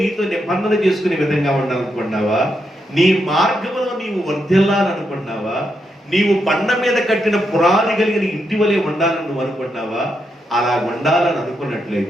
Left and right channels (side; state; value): both; normal; correlation 0.82